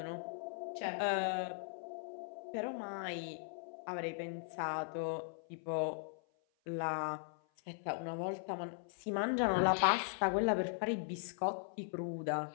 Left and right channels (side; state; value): right; silent; 52 dB below the other